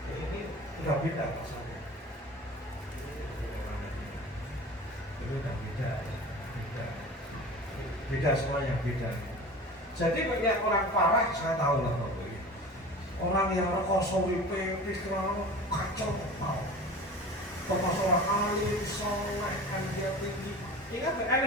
ini udah beda rasanya. Ini udah beda semuanya beda. Jadi banyak orang parah saya tahu lah bapak ini. Orang yang kosong pikiran kacau tahu. Termasuk orang alim, soleh, energi tinggi. Ingat,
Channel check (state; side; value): normal; both; correlation 0.37